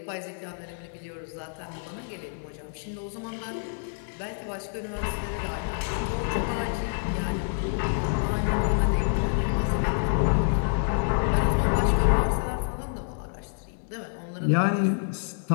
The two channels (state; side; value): silent; right; 60 dB below the other